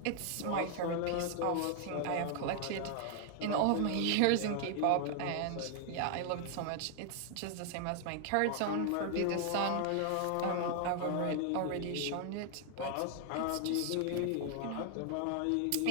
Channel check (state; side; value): different; both; correlation 0.00